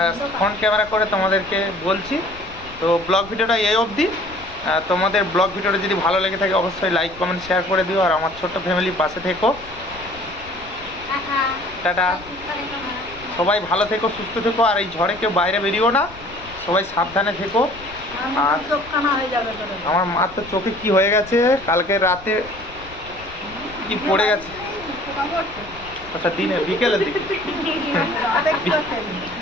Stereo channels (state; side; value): noise; left; rumble, 19 dB below the sound